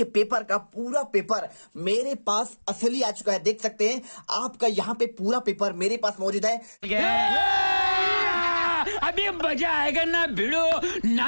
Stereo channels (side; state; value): both; inverted; correlation -1.00